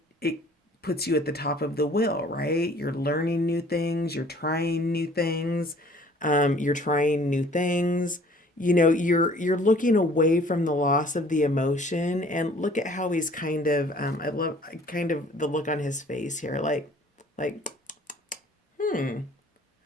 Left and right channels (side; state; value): both; normal; correlation 0.53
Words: puts you at the top of the wheel, right? You're learning new things, you're trying new things, you're trying new things. You're looking away from the loss of the emotion, and look at how he's kind of I love kind of the look on his face here, like